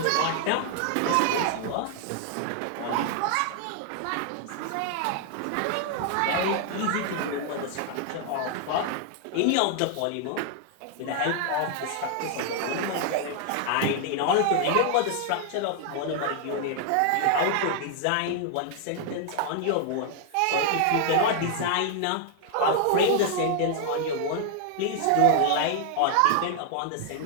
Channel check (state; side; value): different; both; correlation 0.00